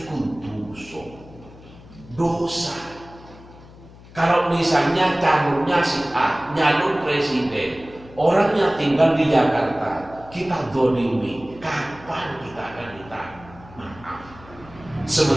dosa. Kalau misalnya calonnya si A, nyalon presiden, orangnya tinggal di Jakarta, kita zalimi, kapan kita akan minta maaf?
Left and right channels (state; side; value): noise; left; hum, 21 dB below the sound